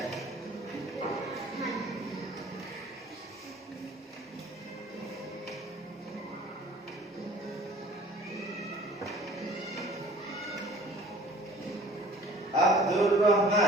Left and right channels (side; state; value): both; normal; correlation 0.49